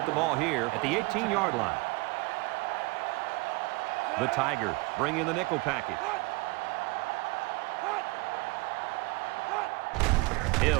the ball here at the 18-yard line. The Tigers bring in the nickel package.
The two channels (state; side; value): quieter; left; 25.1 dB